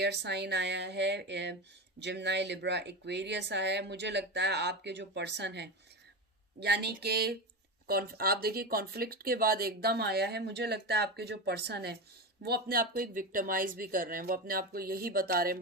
साइन आया है, जिम्नाई, लिब्रा, एक्वेरियस आया है। मुझे लगता है आपके जो पर्सन है, यानी कि आप देखिए कॉन्फ्लिक्ट के बाद एकदम आया है। मुझे लगता है आपके जो पर्सन है वो अपने आप को एक विक्टिमाइज भी कर रहे हैं। वो अपने आप को यही बता रहे हैं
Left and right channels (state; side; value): normal; both; correlation 0.20